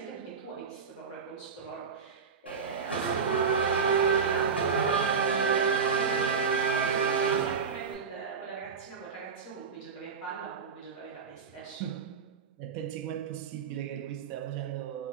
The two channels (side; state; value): left; quieter; 5.9 dB